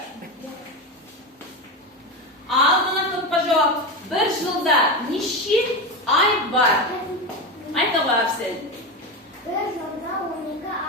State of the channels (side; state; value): both; normal; correlation 0.18